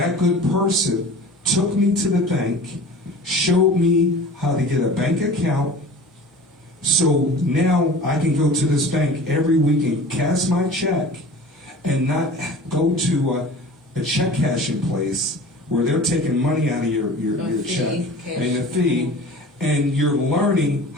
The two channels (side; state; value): both; normal; correlation 0.40